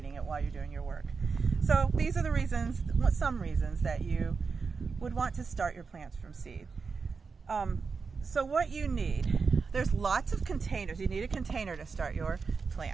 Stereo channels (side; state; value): left; quieter; 5.0 dB